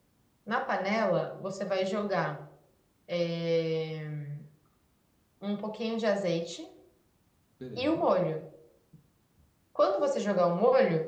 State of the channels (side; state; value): both; identical; correlation 1.00